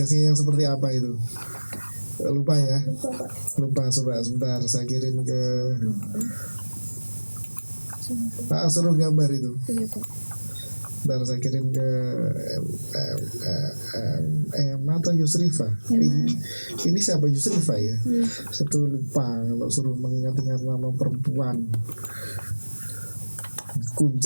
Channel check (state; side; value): inverted; both; correlation -1.00